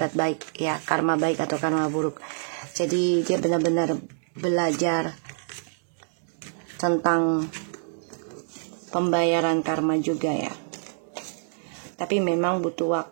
baik ya, karma baik atau karma buruk. Jadi dia benar-benar belajar tentang pembayaran karma juga ya, tapi memang butuh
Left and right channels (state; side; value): silent; left; digital silence